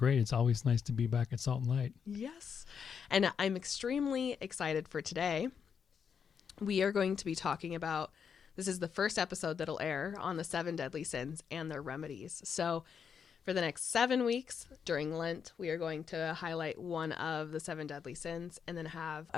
It's always nice to be back at Salt and Light. Yes. And I'm extremely excited for today. We are going to be talking about, this is the first episode that'll air on the 7 deadly sins and their remedies. So for the next 7 weeks during Lent, we are going to highlight one of the 7 deadly sins and then have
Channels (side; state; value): right; quieter; 6.9 dB